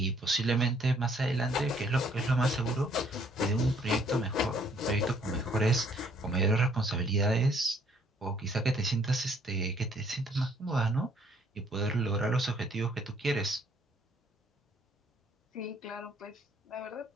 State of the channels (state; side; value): normal; both; correlation 0.64